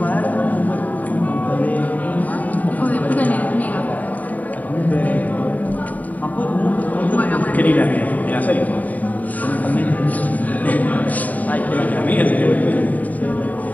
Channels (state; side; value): late; right; 0.074 ms